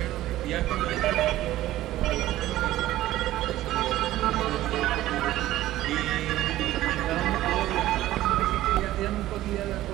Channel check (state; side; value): quieter; left; 14.9 dB